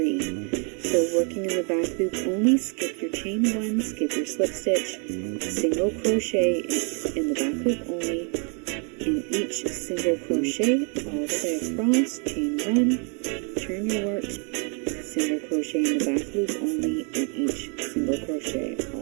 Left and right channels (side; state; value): left; quieter; 37.3 dB